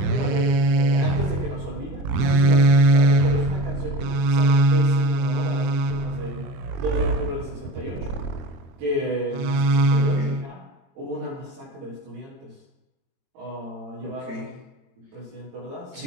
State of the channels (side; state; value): left; late; 23 ms